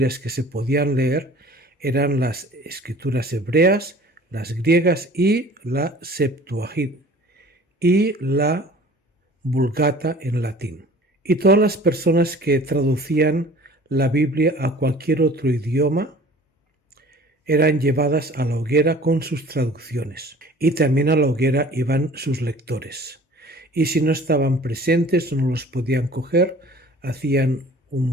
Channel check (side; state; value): both; normal; correlation 0.47